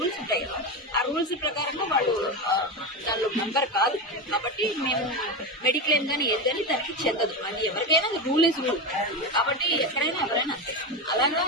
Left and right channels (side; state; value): both; normal; correlation 0.17